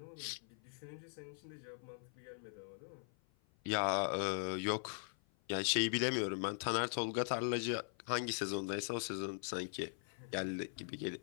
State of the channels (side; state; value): right; silent; 50 dB below the other